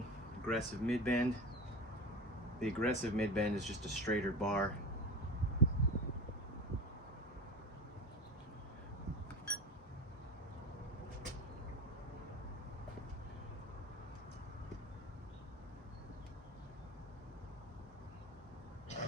aggressive mid-bend. The aggressive mid-bend is just a straighter bar.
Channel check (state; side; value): normal; both; correlation 0.28